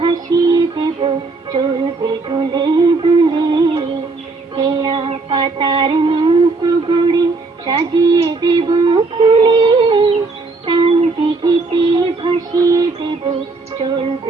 দেব চলবে দুলে দুলে কেয়া পাতার নৌকো গড়ি সাজিয়ে দেব ফুলে তাল দিঘিতে ভাসিয়ে দেব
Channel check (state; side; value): quieter; left; 3.7 dB